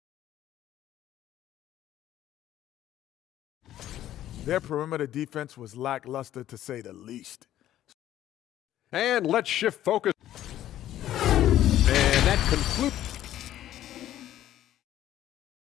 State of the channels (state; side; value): quieter; right; 12.6 dB